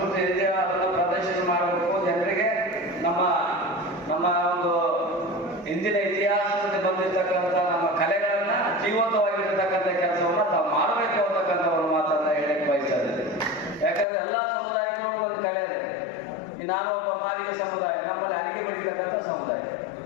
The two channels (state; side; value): drops out; right; at 14.1 s